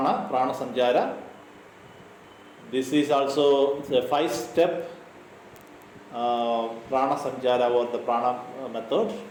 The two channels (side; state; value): both; identical; correlation 1.00